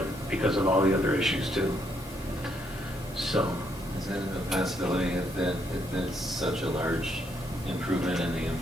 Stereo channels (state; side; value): normal; both; correlation 0.74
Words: because of all the other issues too. So, Is it a possibility if it's such a large improvement in the